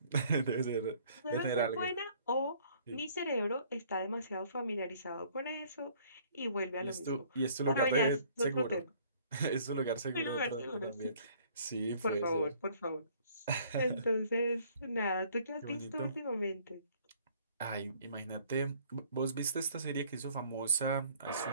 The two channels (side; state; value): both; inverted; correlation -0.58